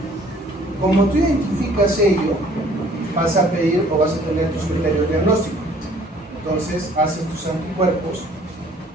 Como tú identificas ello, vas a pedir o vas a tener tus criterios diagnósticos. Entonces haces tus anticuerpos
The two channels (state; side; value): normal; both; correlation 0.57